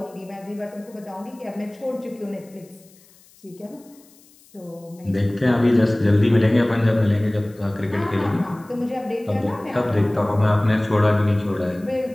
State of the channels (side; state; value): left; noise; hiss, 28 dB below the sound